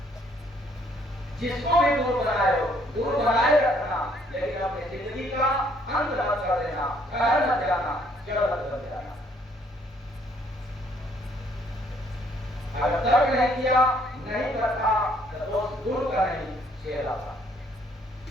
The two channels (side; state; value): both; normal; correlation 0.65